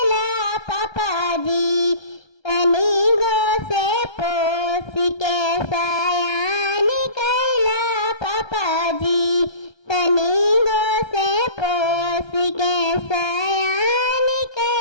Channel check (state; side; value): late; right; 1.3 ms